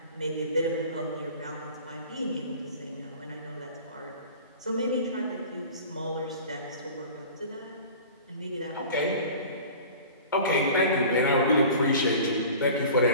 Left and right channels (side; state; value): both; inverted; correlation -0.41